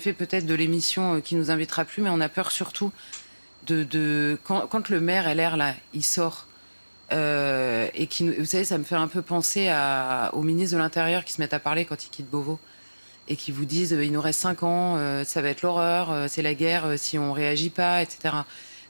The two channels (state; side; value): inverted; both; correlation -1.00